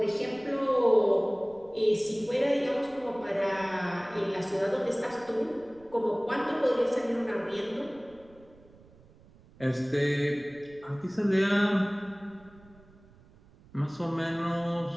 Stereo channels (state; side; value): noise; right; rumble, 25 dB below the sound